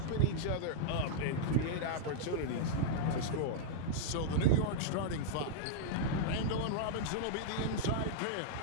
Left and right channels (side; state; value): both; different; correlation -0.02